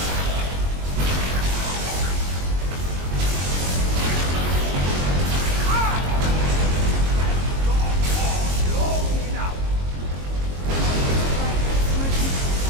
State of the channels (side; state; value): left; late; 22 ms